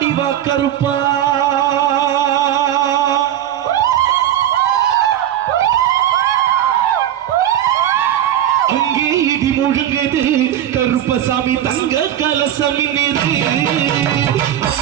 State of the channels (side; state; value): left; quieter; 11.3 dB